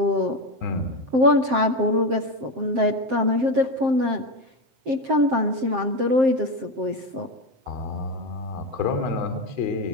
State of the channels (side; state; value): left; late; 7.6 ms